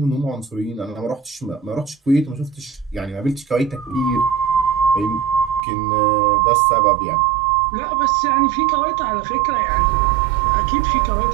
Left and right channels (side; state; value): left; drops out; at 5.6 s